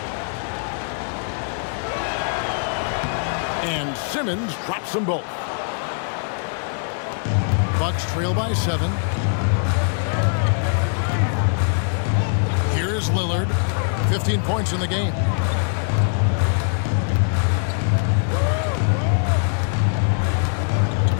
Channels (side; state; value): right; silent; 64 dB below the other